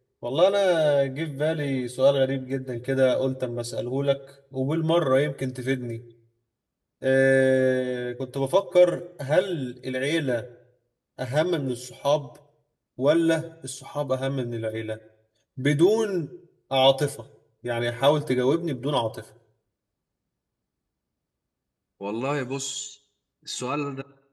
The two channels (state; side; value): identical; both; correlation 1.00